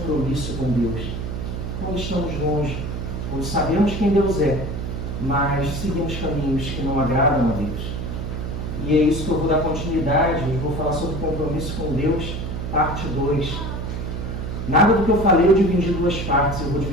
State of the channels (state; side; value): noise; right; hum, 5 dB below the sound